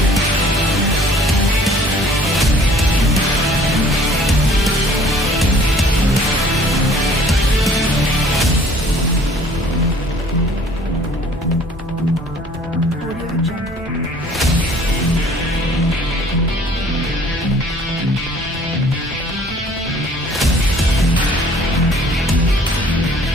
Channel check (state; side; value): normal; both; correlation 0.54